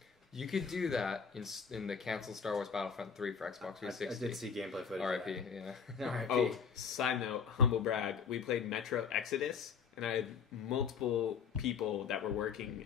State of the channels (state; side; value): quieter; right; 6.3 dB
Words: You could do that in the canceled Star Wars Battlefront 3 for Xbox 360. I did see gameplay footage. R.I.P. Yeah. R.I.P. Oh, side note, humble brag. We played Metro Exodus, and I had multiple people that were